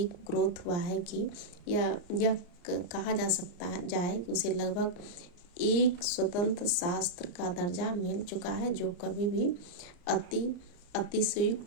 ग्रोथ हुआ है कि यह कहा जा सकता है कि उसे लगभग एक स्वतंत्र शास्त्र का दर्जा मिल चुका है, जो कभी भी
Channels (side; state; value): right; late; 34 ms